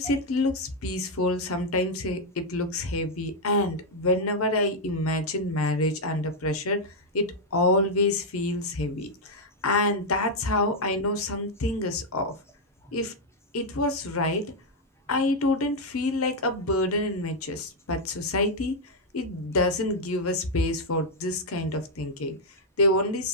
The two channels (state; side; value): normal; both; correlation -0.01